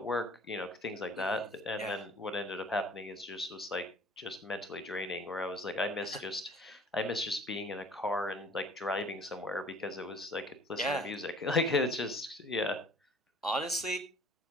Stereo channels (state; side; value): normal; both; correlation 0.50